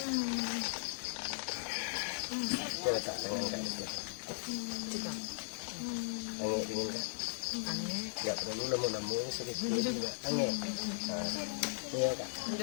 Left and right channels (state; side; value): silent; right; digital silence